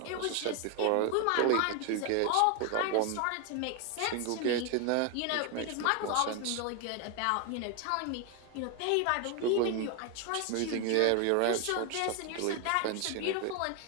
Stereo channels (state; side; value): different; both; correlation 0.01